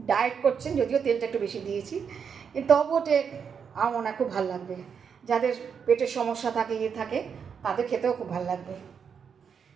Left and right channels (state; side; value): quieter; left; 6.8 dB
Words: ডায়েট করছেন, যদিও তেলটা একটু বেশি দিয়েছি, কিন্তু তবুও আমার মনে হয় খুব ভালো লাগবে। যাদের পেটের সমস্যা থাকে, থাকে, তাদের খেতেও খুব ভালো লাগবে।